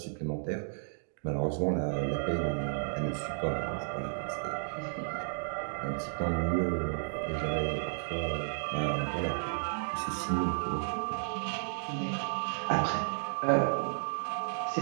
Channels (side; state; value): left; silent; digital silence